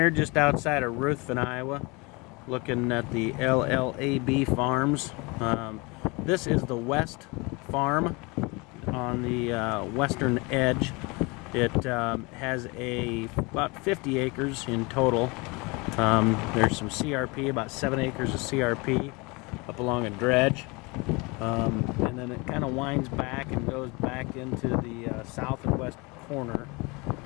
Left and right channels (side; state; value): right; quieter; 27.0 dB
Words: just outside of Ruthven, Iowa, looking at the LLAB farms. This is the West Farm on the western edge. It has about 50 acres in total. There's some CRP, about 7 acres of CRP up along a dredge. And then it kind of winds back and goes back into the south and west corner